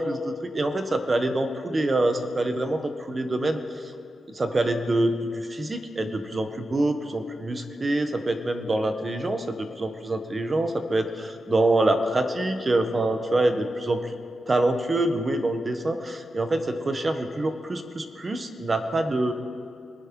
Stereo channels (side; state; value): both; normal; correlation 0.90